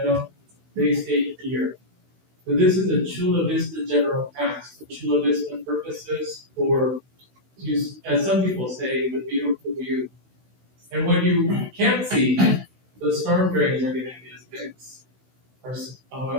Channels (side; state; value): left; late; 16 ms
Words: they stay here. So this is a Chula Vista general tax for Chula Vista purposes, or as some people say, the beautiful view. And when you can't see, the storm drains are getting as fixed. And